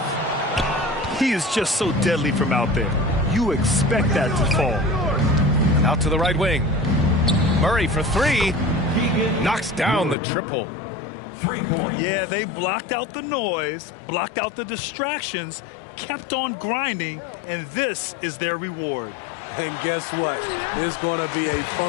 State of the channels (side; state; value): right; drops out; at 10.2 s